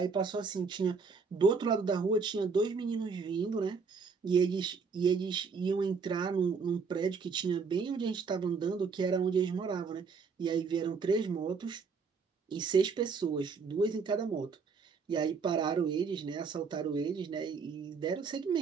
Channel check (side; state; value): left; quieter; 5.2 dB